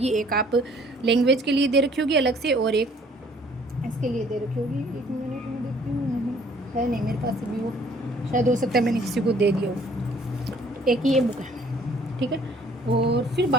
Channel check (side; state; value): both; normal; correlation 0.58